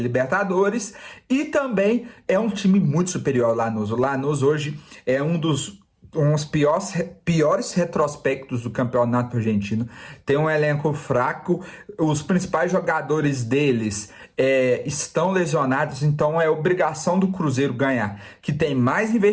E também é um time muito superior ao Lanús. O Lanús hoje é um dos piores retrospectos do campeonato argentino. Tem um elenco fraco, os principais jogadores deles estão lesionados, então é obrigação do Cruzeiro ganhar, que tem mais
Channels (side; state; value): both; identical; correlation 1.00